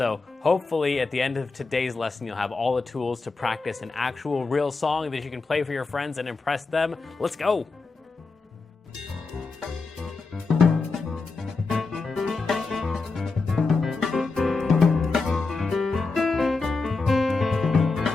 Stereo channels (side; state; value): right; quieter; 4.0 dB